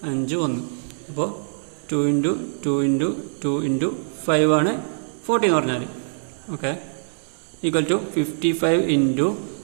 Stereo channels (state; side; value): silent; left; digital silence